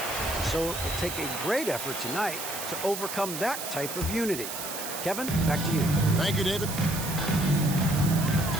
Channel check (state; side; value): noise; right; hiss, 6 dB below the sound